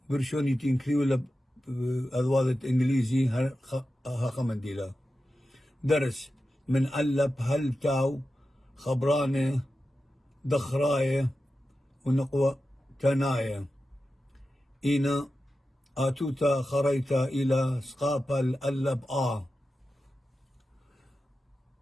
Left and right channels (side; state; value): both; normal; correlation 0.92